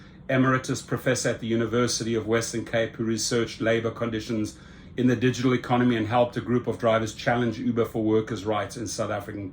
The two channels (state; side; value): identical; both; correlation 1.00